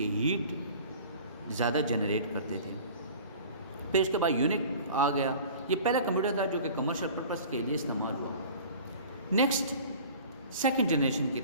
ہیٹ زیادہ جنریٹ کرتے تھے. پھر اس کے بعد یونک آ گیا. یہ پہلا کمپیوٹر تھا جو کہ کمرشل پرپس کے لیے استعمال ہوا. نیکسٹ سیکنڈ جنریشن کی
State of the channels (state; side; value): inverted; both; correlation -0.43